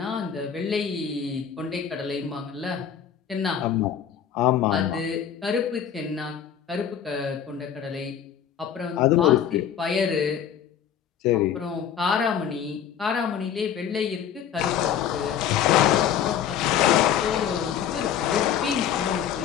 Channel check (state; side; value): quieter; right; 8.8 dB